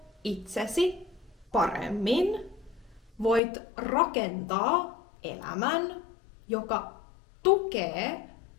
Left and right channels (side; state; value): right; drops out; at 3.4 s